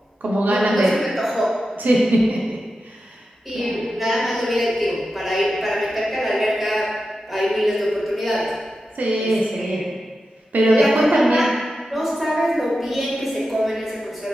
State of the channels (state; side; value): normal; both; correlation 0.91